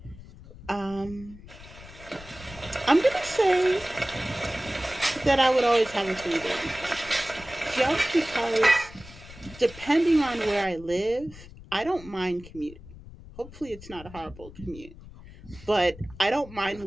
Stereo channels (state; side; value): noise; left; rumble, 18 dB below the sound